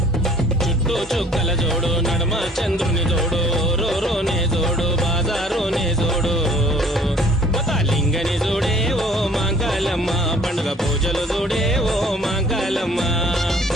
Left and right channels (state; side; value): normal; both; correlation 0.54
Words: చుక్కల జోడు నడమ చంద్రుని జోడు రోనే జోడు బాజారోనే జోడు లింగని జోడే ఓ మాంకాలమ్మ పండుగ పూజలు జోడే ఓ మాంకాలమ్మ